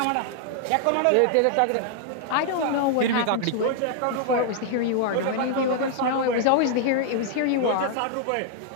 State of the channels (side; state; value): both; different; correlation -0.01